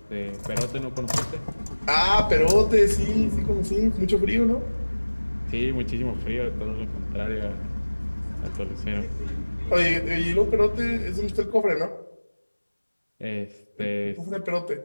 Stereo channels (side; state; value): both; inverted; correlation -1.00